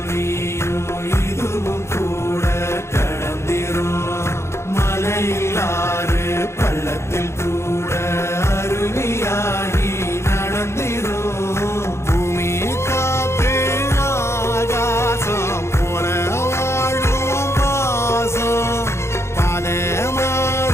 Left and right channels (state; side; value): late; right; 0.13 ms